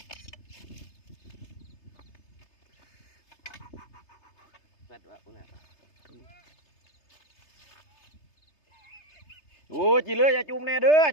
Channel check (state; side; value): late; right; 3.3 ms